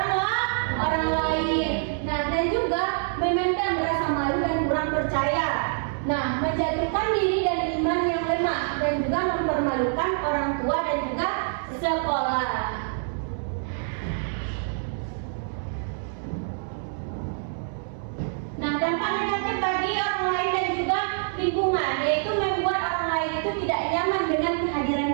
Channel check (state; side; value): silent; left; digital silence